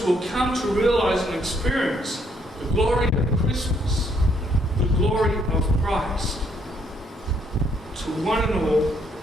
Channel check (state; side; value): normal; both; correlation 0.70